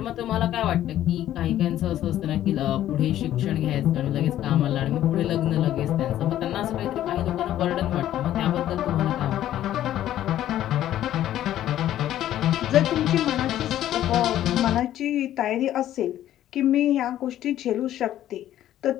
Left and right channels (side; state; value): right; quieter; 12.4 dB